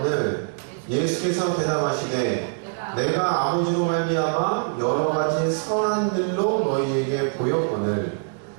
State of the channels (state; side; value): silent; left; 63 dB below the other